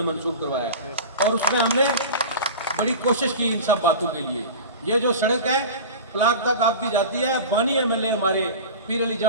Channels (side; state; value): both; inverted; correlation -0.32